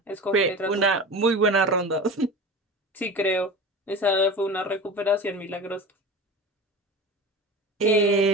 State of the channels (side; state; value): both; normal; correlation 0.32